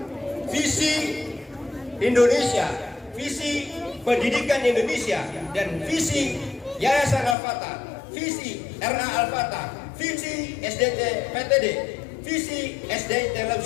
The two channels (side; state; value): right; drops out; at 7.4 s